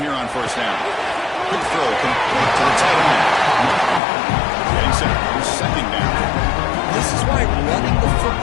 on first down. Quick throw complete to the tight end. Getting set for second down. This is why running the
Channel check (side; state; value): right; drops out; at 4.0 s